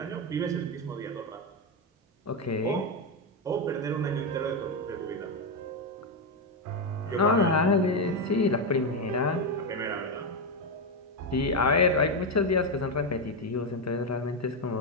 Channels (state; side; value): normal; both; correlation 0.07